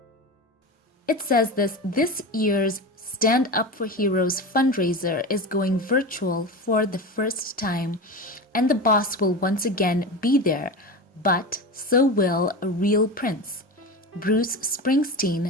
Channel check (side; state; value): both; normal; correlation 0.25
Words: It says this year's Stand Up for Heroes fundraiser is going virtual for the first time, and the boss will once again be there, but so will a real prince. Bruce